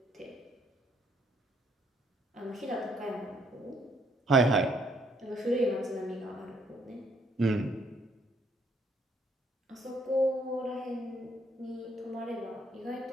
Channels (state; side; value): normal; both; correlation 0.68